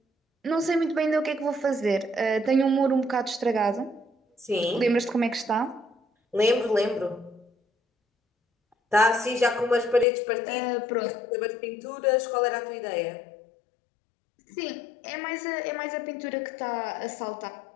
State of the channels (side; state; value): right; drops out; at 10.1 s